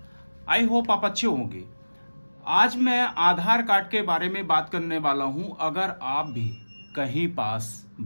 आई होप आप अच्छे होंगे। आज मैं आधार कार्ड के बारे में बात करने वाला हूं। अगर आप भी कहीं पास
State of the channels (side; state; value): both; inverted; correlation -1.00